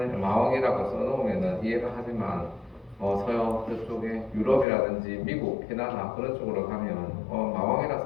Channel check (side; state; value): right; drops out; at 4.7 s